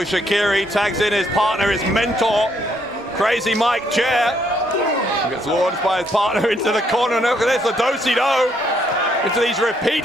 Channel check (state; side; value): normal; both; correlation 0.71